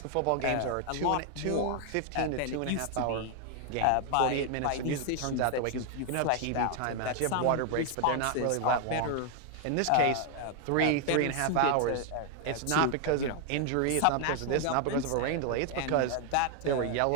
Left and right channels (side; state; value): both; different; correlation 0.00